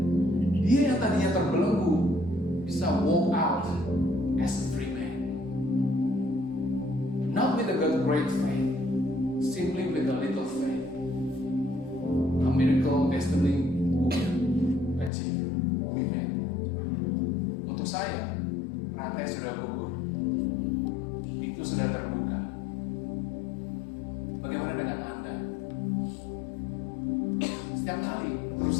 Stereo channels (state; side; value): drops out; right; at 15.1 s